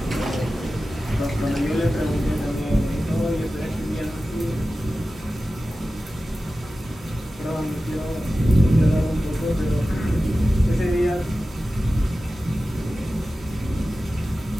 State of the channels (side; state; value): both; normal; correlation 0.95